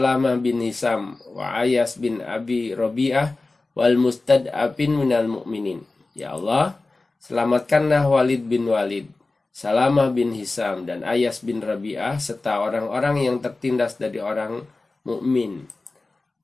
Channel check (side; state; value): right; quieter; 3.4 dB